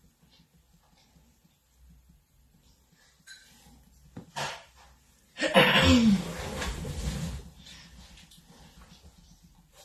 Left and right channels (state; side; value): identical; both; correlation 1.00